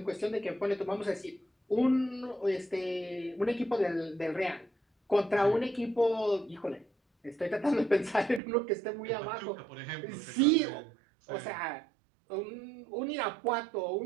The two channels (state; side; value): drops out; left; at 8.4 s